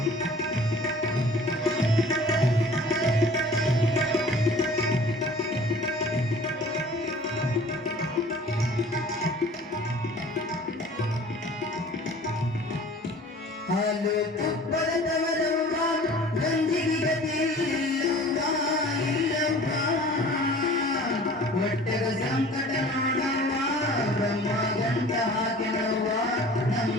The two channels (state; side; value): normal; both; correlation 0.47